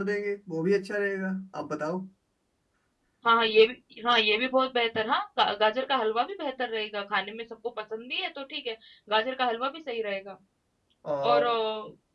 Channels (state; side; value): identical; both; correlation 1.00